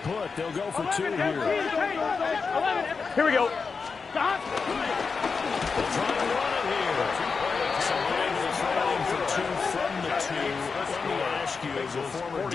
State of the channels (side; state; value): right; quieter; 5.0 dB